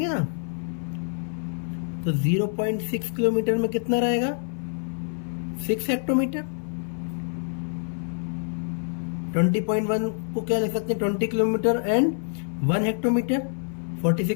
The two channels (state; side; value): silent; right; 58 dB below the other